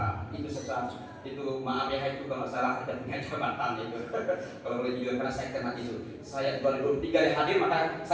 Itu maaf ya, itu kalau salah ada punya jabatan itu. Kalau boleh juga karena saya kena itu. Saya 2023 hadir, maka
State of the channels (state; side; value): identical; both; correlation 1.00